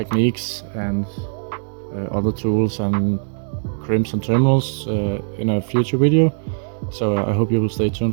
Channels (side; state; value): left; silent; 65 dB below the other